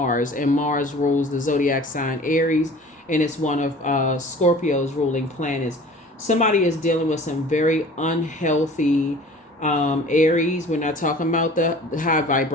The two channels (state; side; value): normal; both; correlation 0.45